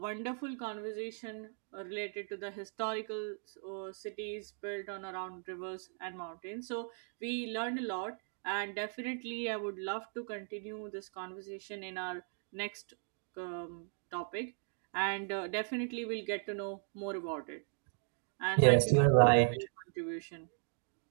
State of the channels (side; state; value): left; silent; 53 dB below the other